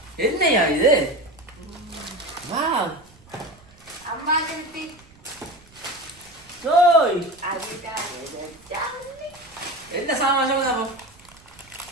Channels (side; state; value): right; noise; rumble, 26 dB below the sound